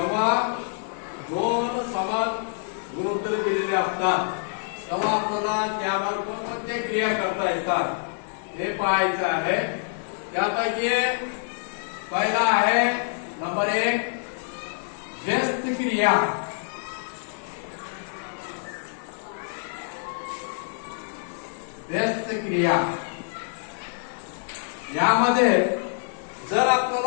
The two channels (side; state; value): right; silent; 61 dB below the other